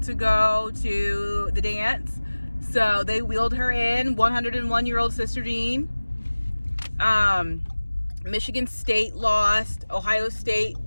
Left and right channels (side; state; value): both; inverted; correlation -1.00